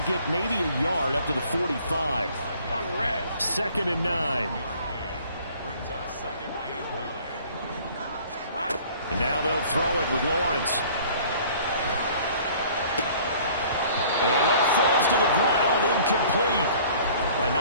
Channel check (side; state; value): both; inverted; correlation -0.52